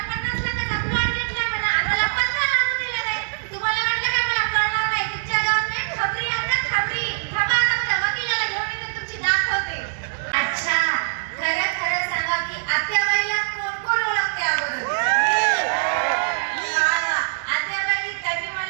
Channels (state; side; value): silent; left; digital silence